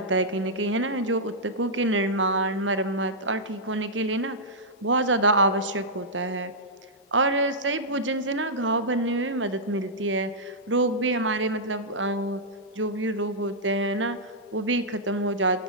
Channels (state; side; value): normal; both; correlation -0.11